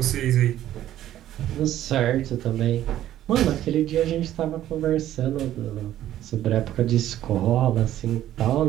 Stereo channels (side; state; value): left; quieter; 12.6 dB